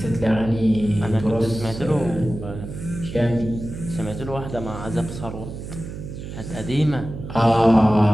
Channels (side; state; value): right; noise; hum, 9 dB below the sound